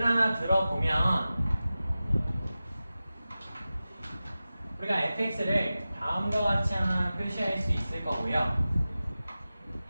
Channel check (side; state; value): both; inverted; correlation -0.95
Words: 하나 들어보면 우리가 fx를 다음과 같이 하나 표시할 수 있을 거고요.